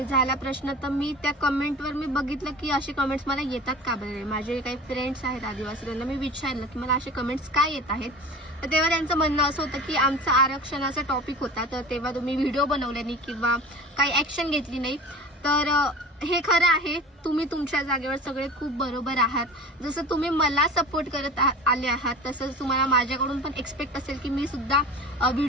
झाला प्रश्न, तर मी त्या कमेंटवर मी बघितलं की असे कमेंट्स मला येतात का बरे। माझे काही फ्रेंड्स आहेत आदिवासी, त्यांना मी विचारलं की मला असे कमेंट्स काय येत आहेत। तर तेव्हा त्यांचं म्हणणं असं होतं की आमचा आरक्षणाचा टॉपिक होता, तर तेव्हा तुम्ही व्हिडिओ बनवले नाही किंवा काही ॲक्शन घेतली नाही। तर हे खरं आहे, तुम्ही तुमच्या जागेवर सगळे खूप बरोबर आहात। जसं तुम्ही मला सपोर्ट करत आले आहात, तसंच तुम्हाला माझ्याकडून पण एक्सपेक्ट असेल की मी सुद्धा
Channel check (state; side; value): normal; both; correlation 0.37